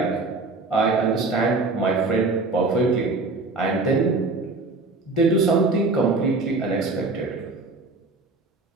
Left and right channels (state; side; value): quieter; left; 3.5 dB